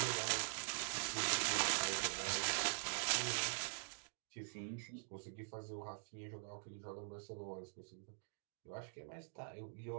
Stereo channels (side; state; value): left; silent; digital silence